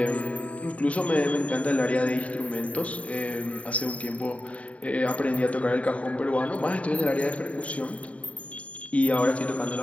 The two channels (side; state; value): right; late; 0.066 ms